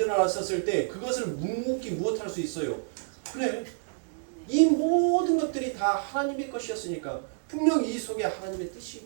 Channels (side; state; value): left; silent; digital silence